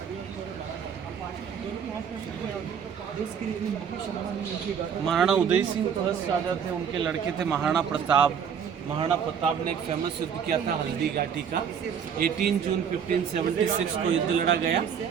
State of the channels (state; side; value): quieter; left; 7.5 dB